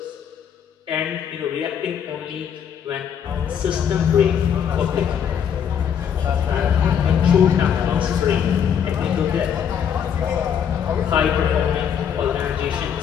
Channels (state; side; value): quieter; right; 8.2 dB